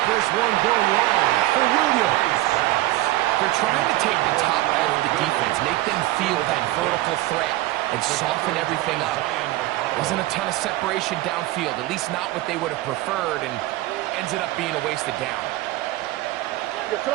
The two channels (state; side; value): quieter; left; 17.3 dB